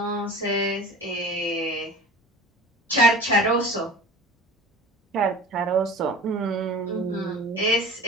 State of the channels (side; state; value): both; normal; correlation 0.39